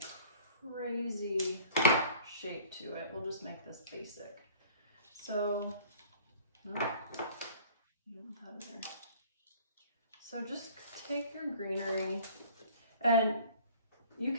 crazy shape to it. We'll just make this basic. So, you don't have it there. So just take your greenery, and you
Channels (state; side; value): inverted; both; correlation -0.49